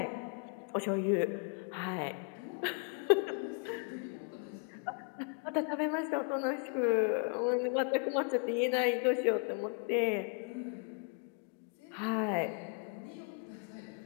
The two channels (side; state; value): right; quieter; 37.2 dB